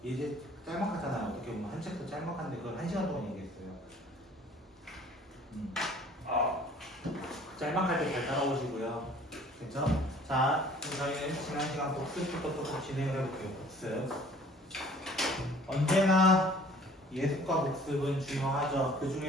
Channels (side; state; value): both; normal; correlation 0.52